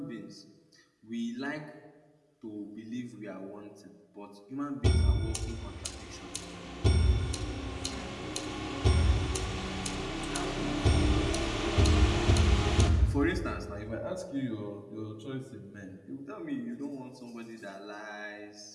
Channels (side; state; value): both; identical; correlation 1.00